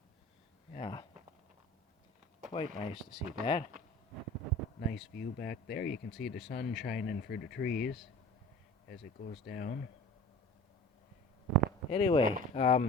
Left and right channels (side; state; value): both; normal; correlation 0.40